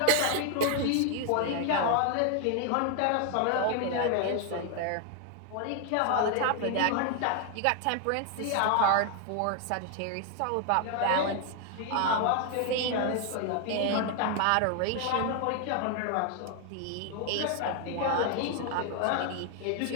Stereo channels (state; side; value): different; both; correlation 0.00